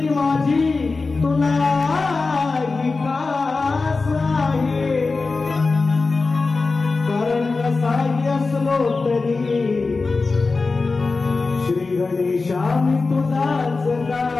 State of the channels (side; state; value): right; quieter; 3.9 dB